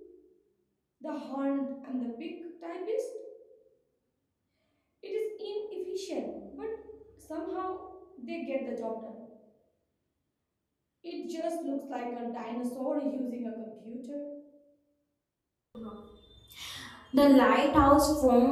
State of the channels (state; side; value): identical; both; correlation 1.00